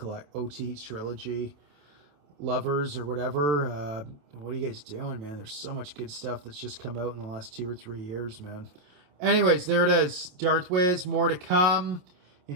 trilogy lovers or whatever. What are you guys doing, man? There's so much good stuff that's just come out in the last 2 or 3 years, man. Anyways, there it is. Darth Wiz, more to come.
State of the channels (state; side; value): late; left; 27 ms